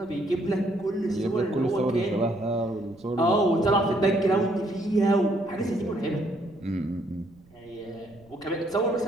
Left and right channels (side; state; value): right; noise; rumble, 27 dB below the sound